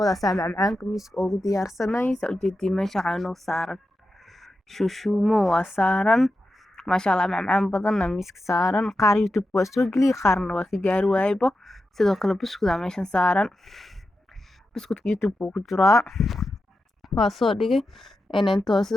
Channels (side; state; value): both; normal; correlation 0.90